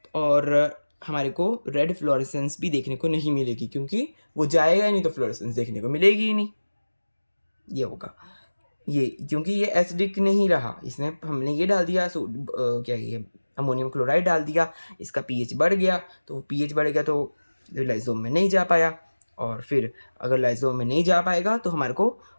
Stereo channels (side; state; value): both; inverted; correlation -1.00